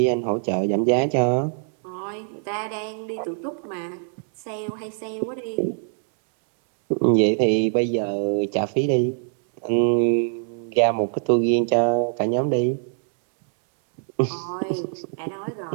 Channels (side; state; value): left; silent; 63 dB below the other